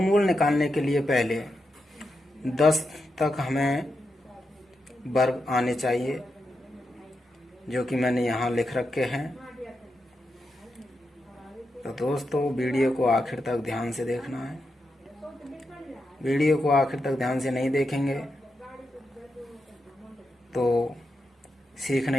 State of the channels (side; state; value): both; normal; correlation 0.86